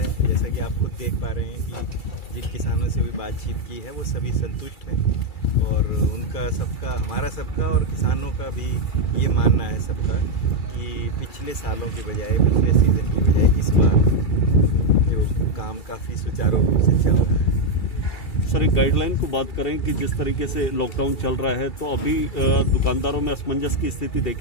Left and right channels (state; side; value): late; right; 2.3 ms